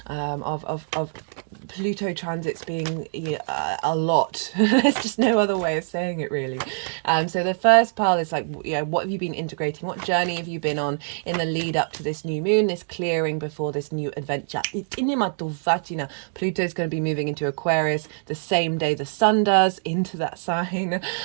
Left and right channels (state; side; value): silent; left; digital silence